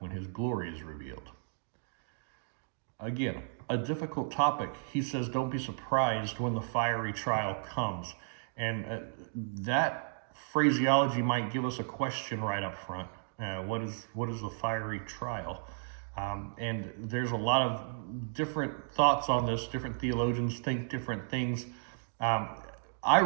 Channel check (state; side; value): silent; left; digital silence